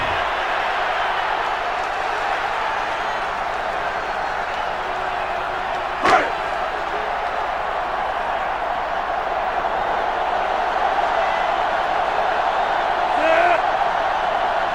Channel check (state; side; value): identical; both; correlation 1.00